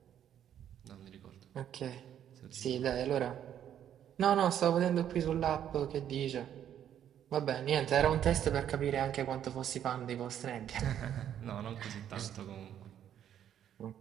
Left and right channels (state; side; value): quieter; left; 10.1 dB